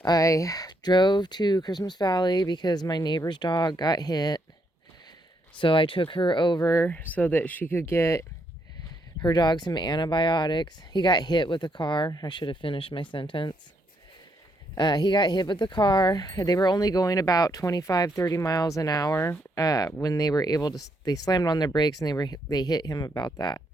I drove to Christmas Valley because my neighbor's dog got hit. So I took her over so that she could get her dog some antibiotics. He got hit with a car. I should have finished my sentence. He got hit with the car. They were only going about 25, 30 miles an hour when they were able to, they slammed on their brakes and they hit him about that.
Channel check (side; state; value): both; normal; correlation 0.75